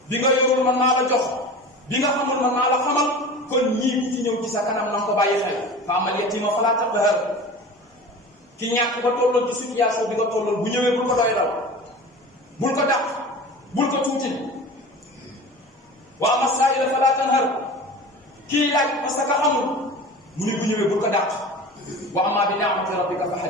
bi nga yorul man naa la jox bi nga xamul man naa la xamal kon ñii ci ñëw ci sa kanam na nga ko bàyyi xel fa amal yatima fala taqhar ki ñàkk ba tolloon ci situation bi nga tolloon bu ñëwee bul ko doy dal bul ko dàq bul ko tuuti wa amma saa'ila fala tanhar kii laaj parce que xamul mu ne bu ñëwee bul ko dàq wa amma bi ni'mati rabbika fa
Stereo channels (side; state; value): both; normal; correlation 0.36